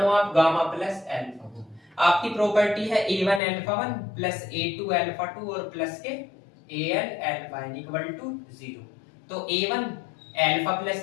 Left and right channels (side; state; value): right; drops out; at 3.4 s